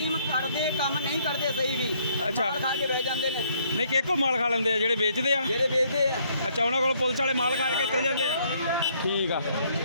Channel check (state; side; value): inverted; both; correlation -0.67